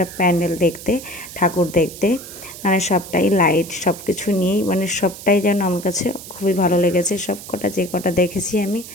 প্যান্ডেল দেখতে, ঠাকুর দেখতে। মানে সবটাই লাইট, সব কিছু নিয়েই মানে সবটাই যেন আমার কাছে খুবই ভালো লেগেছে। সব কটা যে কটা দেখেছি আমি,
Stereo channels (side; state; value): right; noise; hiss, 14 dB below the sound